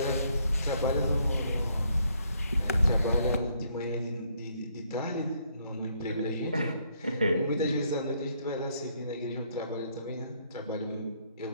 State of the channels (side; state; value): both; inverted; correlation -0.70